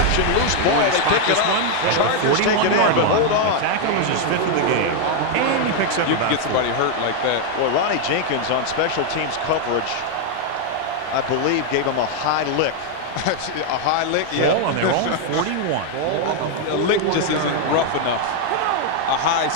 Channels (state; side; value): different; both; correlation 0.01